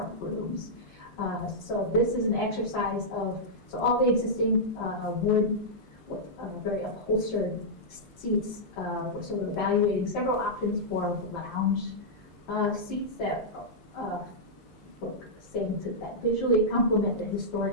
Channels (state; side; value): normal; both; correlation -0.10